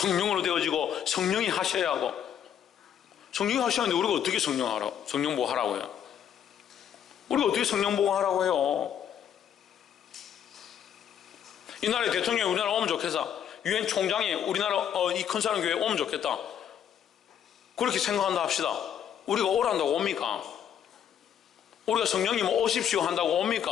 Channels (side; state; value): right; quieter; 9.3 dB